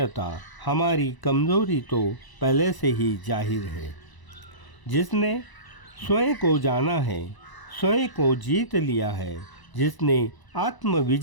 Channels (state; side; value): late; right; 1.0 ms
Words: हमारी कमज़ोरी तो पहले से ही जाहिर है। जिसने स्वयं को जाना है, स्वयं को जीत लिया है, जिसने आत्म